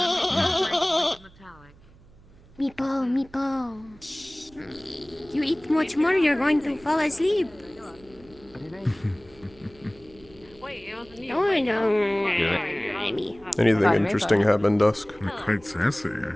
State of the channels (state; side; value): noise; right; hum, 25 dB below the sound